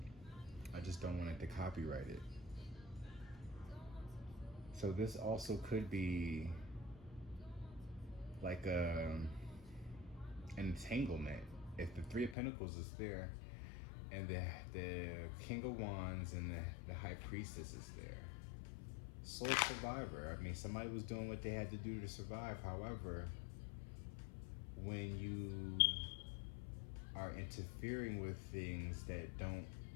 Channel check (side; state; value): right; drops out; at 12.4 s